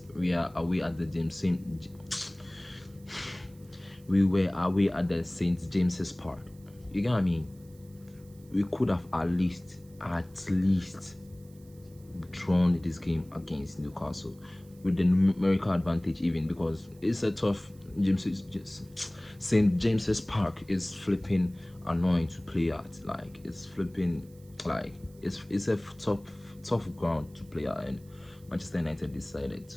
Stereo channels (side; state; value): right; noise; hiss, 28 dB below the sound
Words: we are away at the we were away at the St. James's Park. You get what I mean? We could have at least drawn this game against Newcastle with the numerical advantage, even, because it's a tough St. James's Park is flipping annoying to play at. Like, it's flipping, like, it's a tough ground to play at, and Manchester United decided